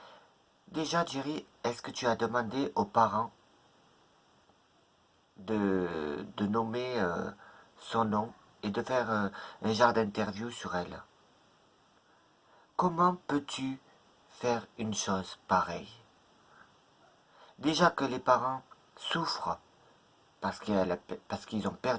Déjà, Jerry, est-ce que tu as demandé aux parents de nommer son nom et de faire un genre d'interview sur elle? Comment peux-tu faire une chose pareille? Déjà que les parents souffrent parce qu'ils ont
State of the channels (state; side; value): identical; both; correlation 1.00